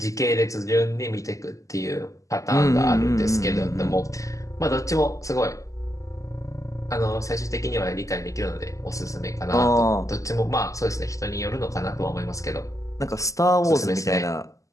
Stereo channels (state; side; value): late; right; 0.16 ms